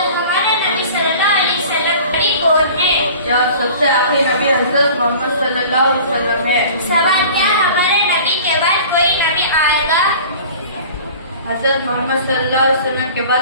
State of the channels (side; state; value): both; inverted; correlation -0.43